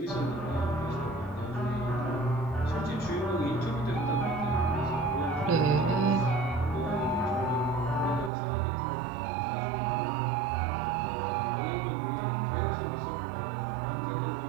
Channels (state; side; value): drops out; left; at 8.3 s